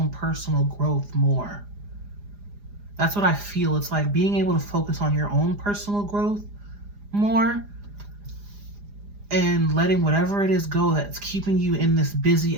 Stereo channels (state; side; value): late; left; 4.9 ms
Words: personal growth more. That's what I feel. It's like being able to focus on your own personal growth more and letting whatever it is go that's keeping you in this busy